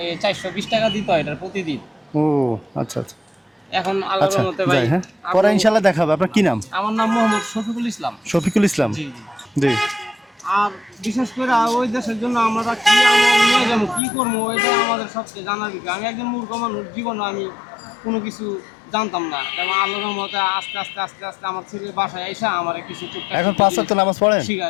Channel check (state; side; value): drops out; right; at 14.0 s